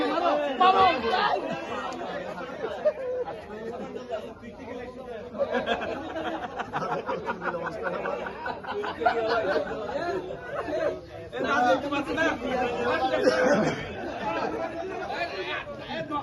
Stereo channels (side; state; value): both; identical; correlation 1.00